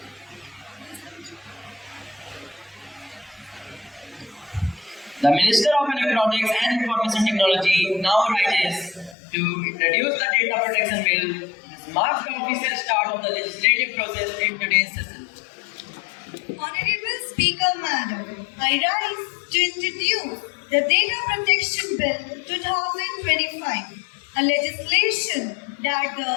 The Minister of Electronics and Information Technology now rises to introduce the Data Protection Bill. This marks the official start of the legislative process in today's session. Honorable Speaker Madam, I rise to introduce the Data Protection Bill 2025, a legislation that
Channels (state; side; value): drops out; right; at 9.2 s